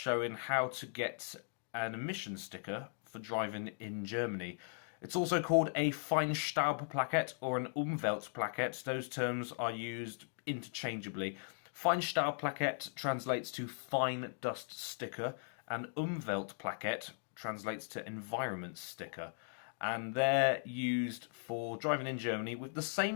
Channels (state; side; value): silent; right; digital silence